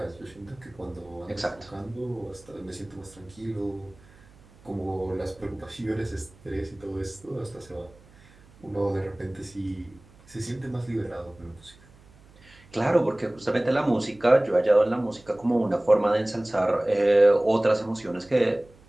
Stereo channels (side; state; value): right; noise; hum, 26 dB below the sound